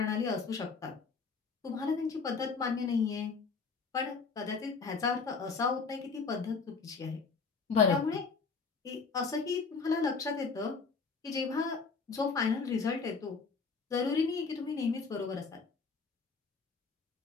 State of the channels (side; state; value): right; quieter; 4.8 dB